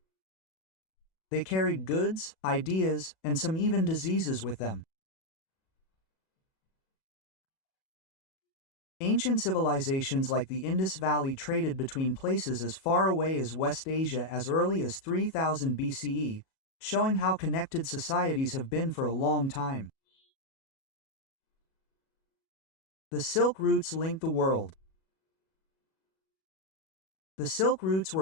They carried goods, ideas, and some even diseases with them. Ancient civilizations like the Indus Valley traded between places as far away as West Asia as early as 3000 BCE, showing how connected societies have been for a long time. The Silk Routes linked the world. The Silk Routes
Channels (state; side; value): late; right; 37 ms